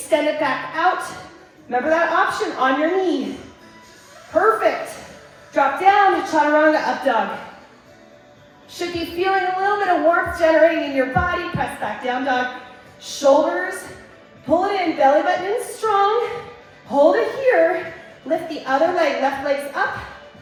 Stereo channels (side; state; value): both; identical; correlation 1.00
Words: it back out. Remember that option on your knee. Perfect. Drop down, chaturanga, up dog. Should be feeling a little bit of warmth generating in your body. Press back down dog. Shoulders, pull it in, belly button in strong. Hold it here. Lift the other leg, left leg's up.